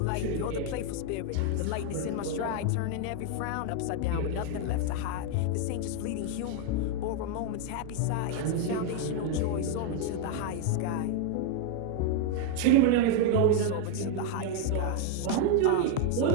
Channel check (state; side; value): different; both; correlation 0.00